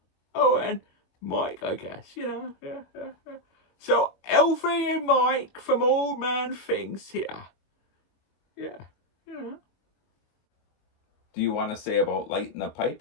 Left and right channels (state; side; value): late; right; 22 ms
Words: Oh, and Mike, I guess, Yeah. So, Alfie and Mike from Old Man Things here. Yeah. Do you want to say about lighting the pipe